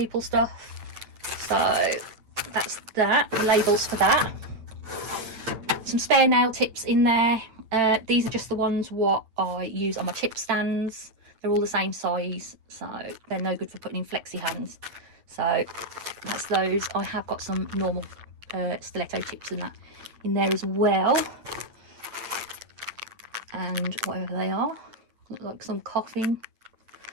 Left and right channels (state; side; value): late; left; 8.9 ms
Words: stuff. So that's that, the labels for that. Some spare nail tips in there. These are just the ones what I use on my chip stands. They're all the same size, so they're no good for putting in flexi hands. So that's those. I have got some normal stiletto tips and that in there as well, and whatever they are, look like some coughing,